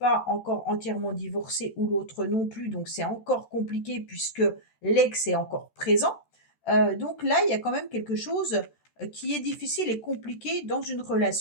encore entièrement divorcé ou l'autre non plus, donc c'est encore compliqué puisque l'ex est encore présent. Donc là, il y a quand même quelque chose qui est difficile et compliqué dans une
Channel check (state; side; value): late; right; 14 ms